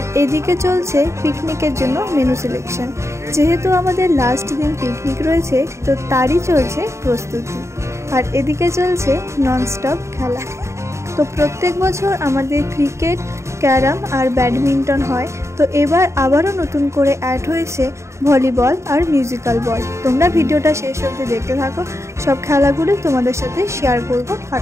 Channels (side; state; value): left; late; 0.14 ms